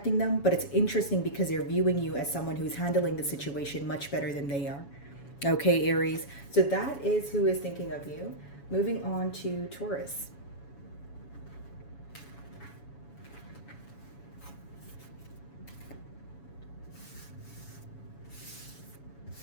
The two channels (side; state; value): right; late; 7.1 ms